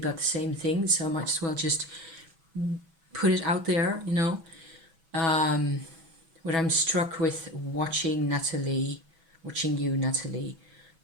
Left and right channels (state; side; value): late; left; 6.1 ms